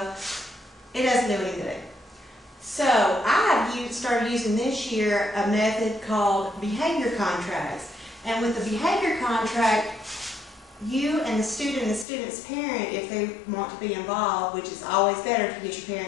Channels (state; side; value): drops out; right; at 12.1 s